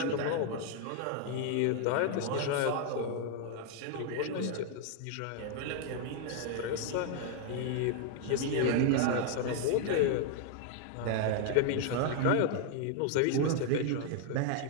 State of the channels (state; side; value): different; both; correlation 0.00